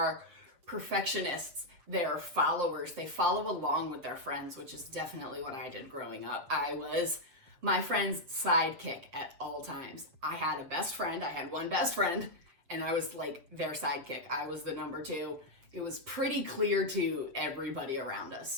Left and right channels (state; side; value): late; left; 7.6 ms